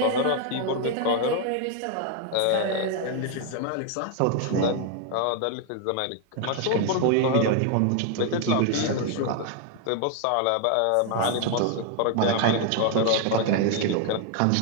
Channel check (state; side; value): different; both; correlation 0.00